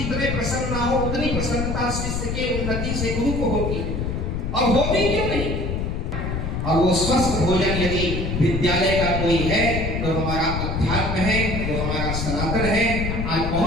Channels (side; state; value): left; noise; rumble, 2 dB below the sound